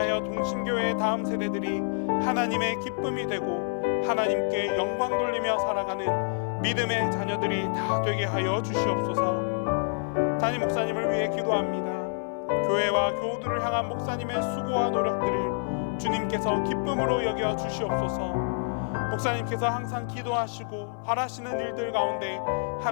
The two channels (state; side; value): silent; right; 60 dB below the other